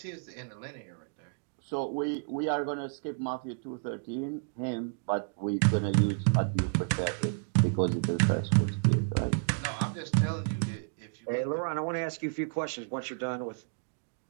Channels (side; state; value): left; silent; digital silence